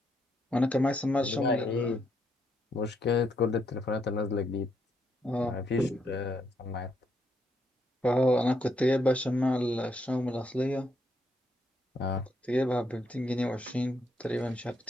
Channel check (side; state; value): both; normal; correlation 0.76